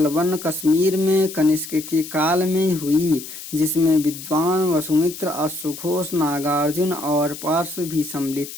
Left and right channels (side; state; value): left; noise; hiss, 12 dB below the sound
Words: कश्मीर में कनिष्क के काल में हुई, जिसमें विद्वान वसुमित्र, अश्वघोष, नागार्जुन और पार्श्व भी सम्मिलित